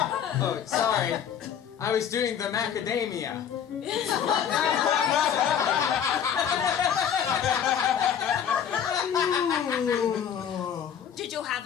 Oh, sorry. I was doing the macadamia. Did you have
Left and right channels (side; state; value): right; quieter; 8.6 dB